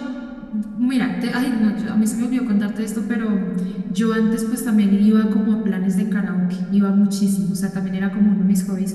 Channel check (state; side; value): identical; both; correlation 1.00